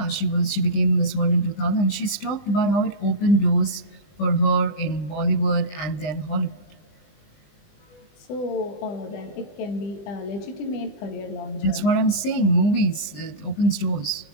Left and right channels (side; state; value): right; late; 20 ms